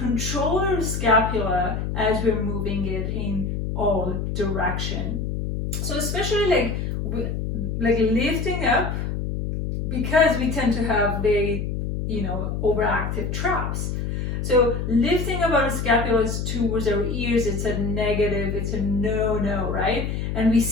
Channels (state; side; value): noise; left; hum, 2 dB below the sound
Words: our scapula as we're moving it in all direction. So especially like lifting up, because we tend to have very, overactive traps. So lifting up our scapulas towards our ears, it's a negative, it's a no, right? And we